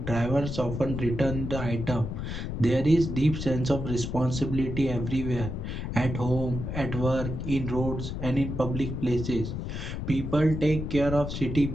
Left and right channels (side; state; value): left; noise; rumble, 5 dB below the sound